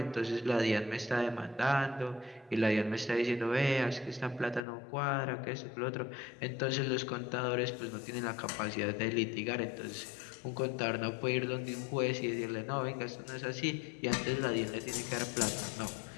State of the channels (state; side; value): drops out; right; at 4.6 s